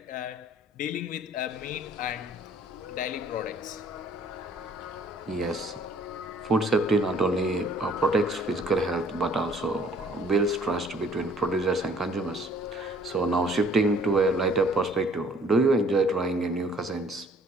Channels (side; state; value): both; normal; correlation 0.57